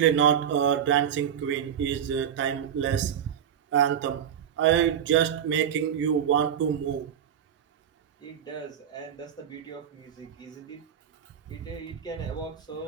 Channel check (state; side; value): quieter; left; 9.0 dB